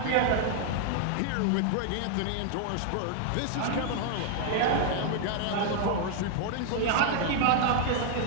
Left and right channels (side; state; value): both; different; correlation 0.00